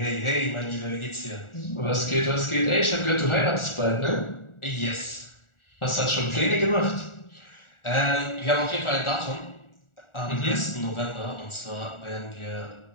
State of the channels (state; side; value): late; right; 1.4 ms